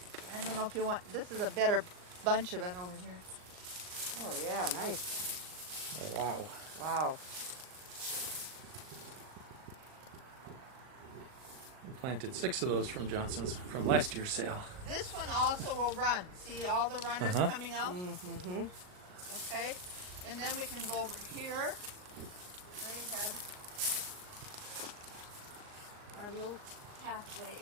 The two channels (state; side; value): late; left; 39 ms